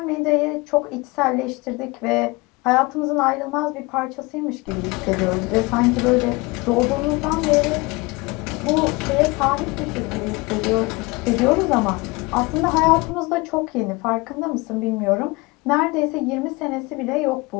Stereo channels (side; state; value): right; quieter; 24.9 dB